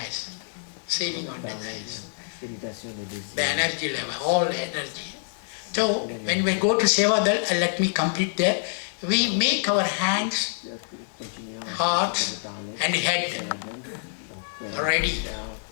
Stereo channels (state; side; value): silent; right; digital silence